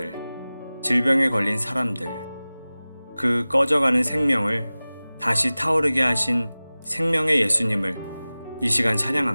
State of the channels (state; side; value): inverted; both; correlation -0.98